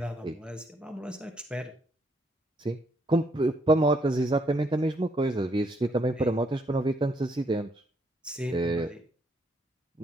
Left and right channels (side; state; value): both; normal; correlation 0.71